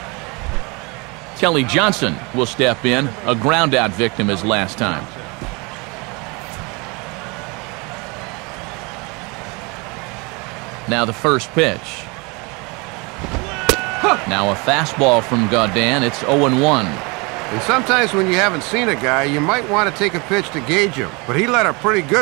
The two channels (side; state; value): left; quieter; 28.5 dB